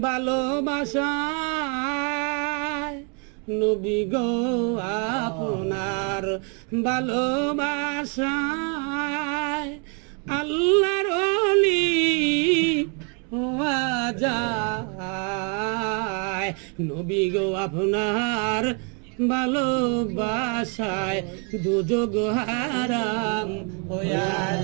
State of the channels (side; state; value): left; quieter; 36.5 dB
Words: ভালোবাসায় নবী গো আপনার ভালোবাসায় আল্লাহর ওলি হওয়া যায় নবী গো আপনার ভালোবাসায় দুযোগ হারাম হইয়া